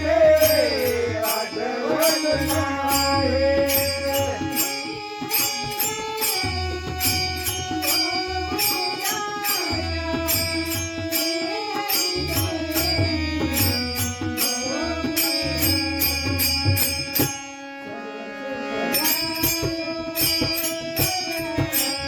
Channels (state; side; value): identical; both; correlation 1.00